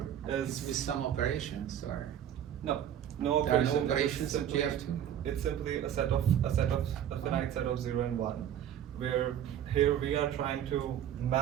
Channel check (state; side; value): quieter; left; 10.2 dB